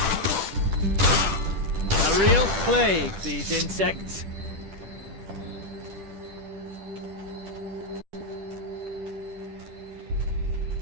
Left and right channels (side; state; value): left; late; 10 ms